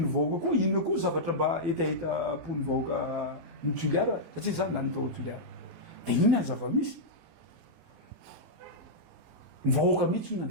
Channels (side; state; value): left; late; 16 ms